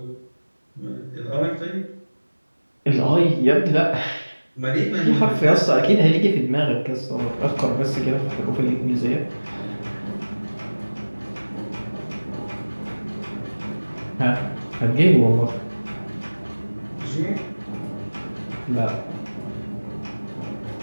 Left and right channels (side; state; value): both; inverted; correlation -1.00